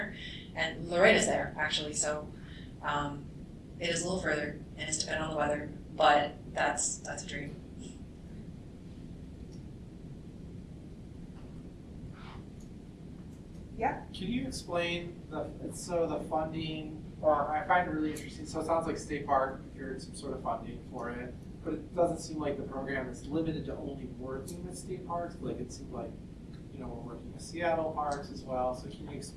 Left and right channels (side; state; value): both; identical; correlation 1.00